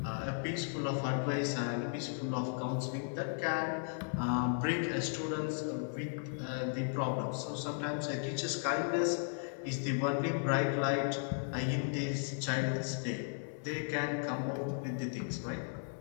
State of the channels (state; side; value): silent; right; 54 dB below the other